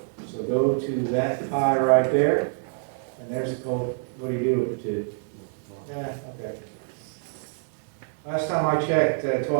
So go to that pi right there, and there's the code. What do you do with the two? Yeah, okay. Last time I checked,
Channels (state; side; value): silent; left; 61 dB below the other